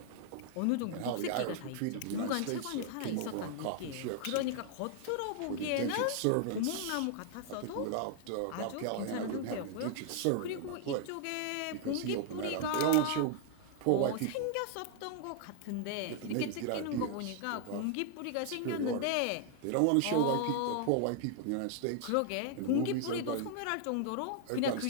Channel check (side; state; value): both; different; correlation 0.00